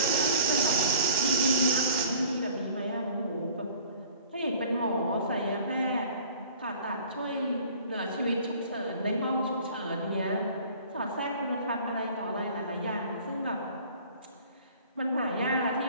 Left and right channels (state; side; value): inverted; both; correlation -0.49